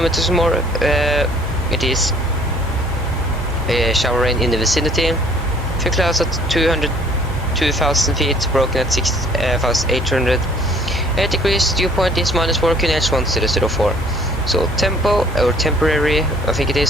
more. It is shower rain in the vicinity. Few clouds at 2,000 feet, broken at 6,800 degrees. Dew point is -4 QNH 1004. So tempo or temporary, I think it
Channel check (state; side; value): normal; both; correlation 0.57